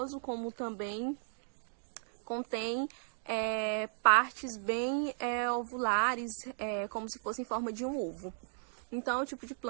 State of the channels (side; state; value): left; silent; digital silence